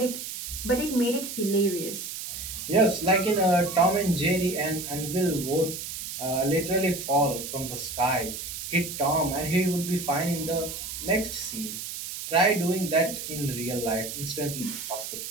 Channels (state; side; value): noise; right; hiss, 7 dB below the sound